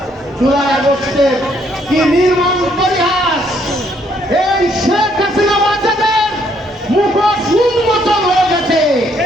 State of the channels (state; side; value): normal; both; correlation 0.69